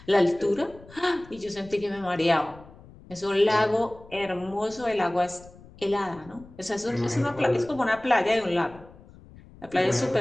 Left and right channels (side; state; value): left; noise; rumble, 22 dB below the sound